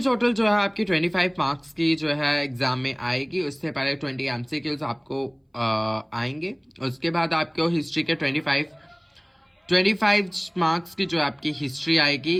जो है आपकी 25 मार्क्स की जो है एग्जाम में आएगी। उससे पहले 20 एमसीक्यूज आपको आएंगे। उसके बाद आपको हिस्ट्री के 25 मार्क्स की जो आपकी हिस्ट्री आएगी,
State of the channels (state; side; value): identical; both; correlation 1.00